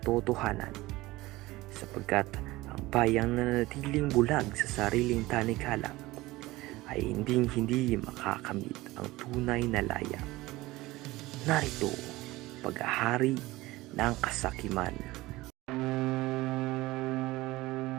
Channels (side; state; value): left; quieter; 19.2 dB